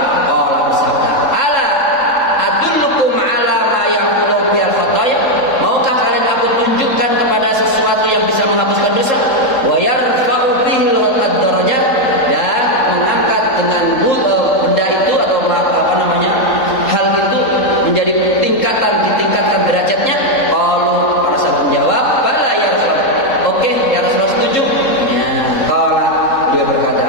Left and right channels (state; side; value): late; right; 3.7 ms